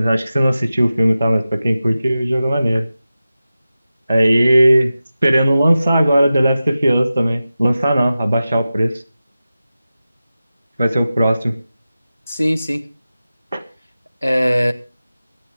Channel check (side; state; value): both; inverted; correlation -0.94